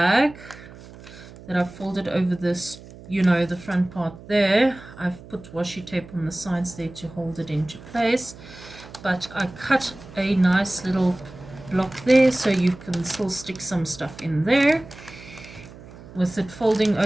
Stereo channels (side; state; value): right; noise; hum, 18 dB below the sound